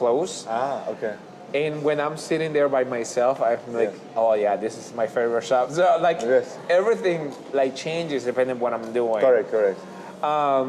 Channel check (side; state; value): both; identical; correlation 1.00